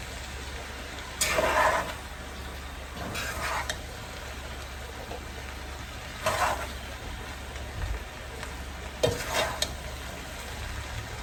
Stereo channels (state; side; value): identical; both; correlation 1.00